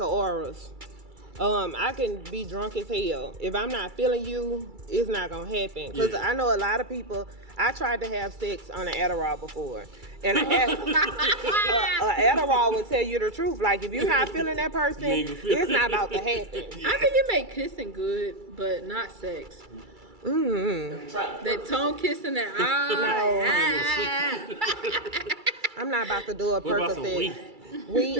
auras. I can be drunk as hell. If I'm not feeling you, it's not gonna happen. Cause Yeah. I know a lot of people. I tried to have sex on an Adderall before, and an Adderall will tell you the truth. Like if you're not feeling that person, You ain't gonna feel it's it. not about to happen. I think it make kissing good, but not sex. That tongue kissing, that I'm not about to do a What about some Percocet. weed?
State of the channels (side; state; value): left; late; 2.3 ms